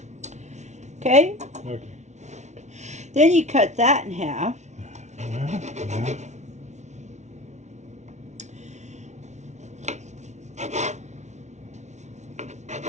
Okay? Okay. Then you cut that in half. Yeah.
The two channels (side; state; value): left; late; 0.33 ms